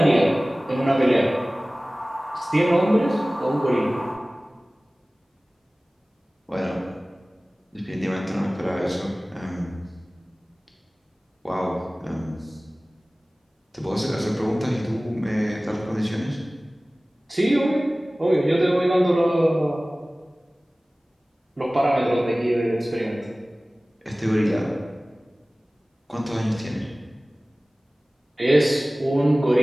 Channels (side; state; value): both; normal; correlation 0.98